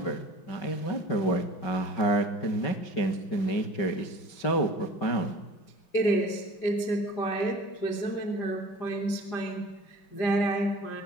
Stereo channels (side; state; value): right; late; 5.3 ms